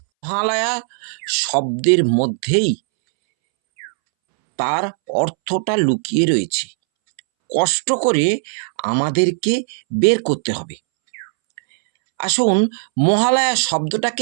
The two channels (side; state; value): left; silent; 66 dB below the other